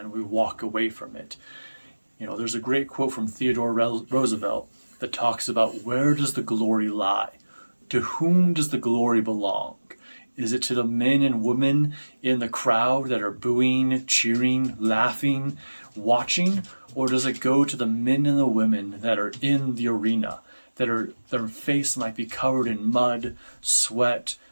we walk away from it. You know, there's a great quote from Theodore Roosevelt that talks about, where does the glory lie? To whom does the glory belong? Is it to the men and women in the crowd that are booing, cheering, laughing, watching? Or does it go to the men and the women that are in the arena, their face might be covered in mud, sweat,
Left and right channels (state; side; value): inverted; both; correlation -1.00